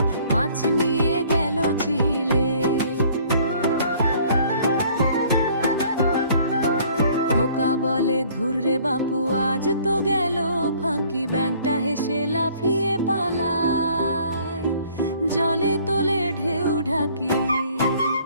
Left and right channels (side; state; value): both; inverted; correlation -0.57